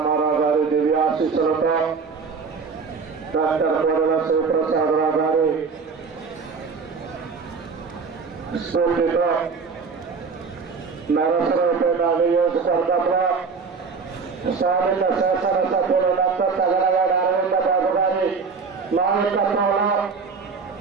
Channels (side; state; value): left; quieter; 5.1 dB